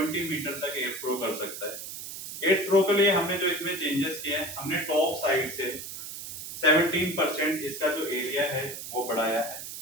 मीटर तक एयर थ्रो कर सकता है। एयर थ्रो के लिए हमने जो इसमें चेंजेस किए हैं, हमने टॉप साइड से 17% इसका जो एरिया है वो बढ़ाया है,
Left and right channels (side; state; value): right; noise; hiss, 9 dB below the sound